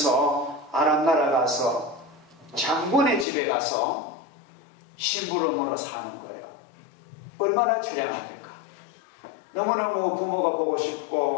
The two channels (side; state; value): right; drops out; at 3.2 s